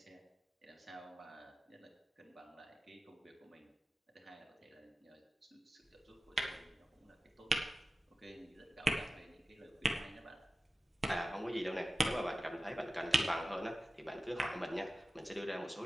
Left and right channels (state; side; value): normal; both; correlation 0.95